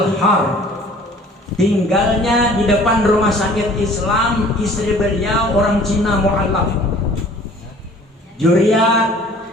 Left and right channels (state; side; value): normal; both; correlation 0.51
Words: Tinggalnya di depan rumah sakit Islam. Istri beliau orang Cina mu'alaf. Juriat